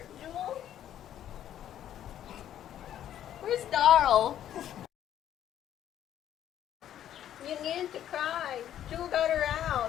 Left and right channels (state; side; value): quieter; right; 11.0 dB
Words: Jewel? Where's Darl? You needed to cry. Jewel got her